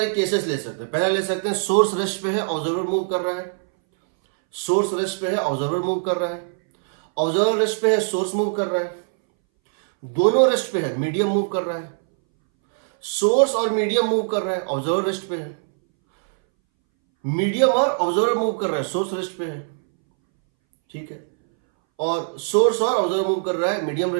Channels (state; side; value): silent; left; 63 dB below the other